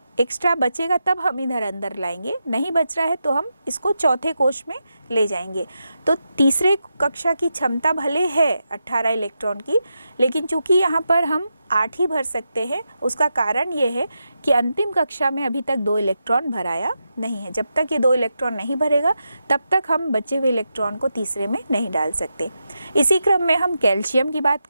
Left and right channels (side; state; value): both; inverted; correlation -0.87